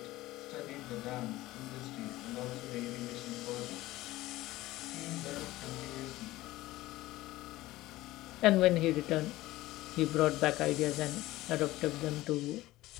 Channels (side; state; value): right; quieter; 17.4 dB